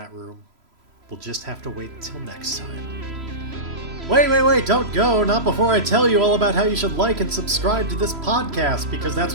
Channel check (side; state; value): left; late; 3.0 ms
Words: room, we'll just have to wait until next time. Wait, don't go, not before I tell you all about how you should like and subscribe to this podcast, because that's